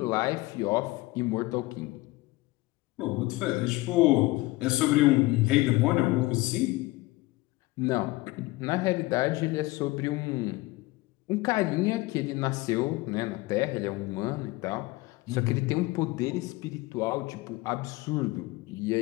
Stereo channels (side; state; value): right; quieter; 20.4 dB